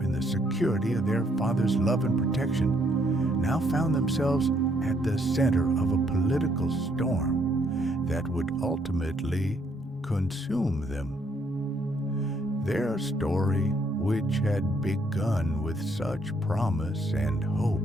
in the security of their father's love and protection, now found themselves at the center of a political storm that would ultimately consume them. Their story, which had begun with such promise and hope,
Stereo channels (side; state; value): both; normal; correlation 0.69